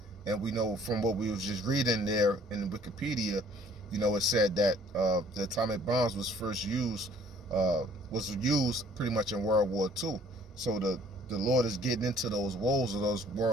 And we know from what we was just reading there in Wikipedia, you know, it said that the atomic bombs was first used, pretty much in World War II. So the Lord is getting into those woes of those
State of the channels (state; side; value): normal; both; correlation 0.58